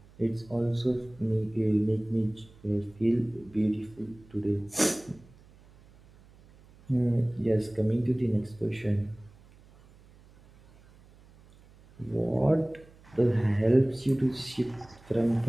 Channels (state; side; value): noise; right; hum, 26 dB below the sound